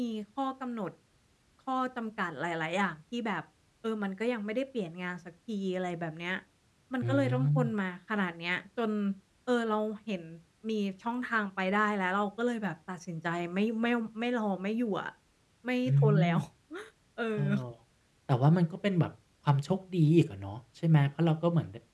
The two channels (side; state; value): both; identical; correlation 1.00